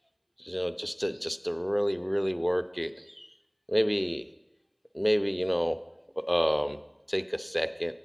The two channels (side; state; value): both; identical; correlation 1.00